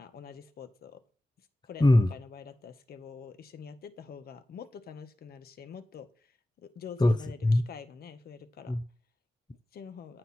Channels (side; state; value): both; normal; correlation 0.96